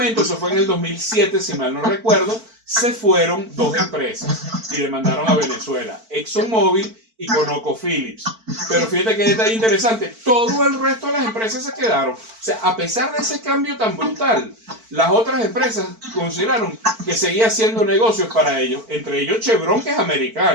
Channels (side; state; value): left; late; 4.5 ms